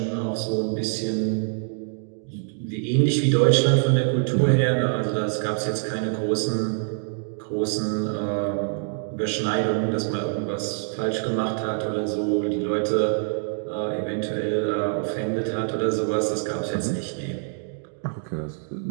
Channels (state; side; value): silent; left; 62 dB below the other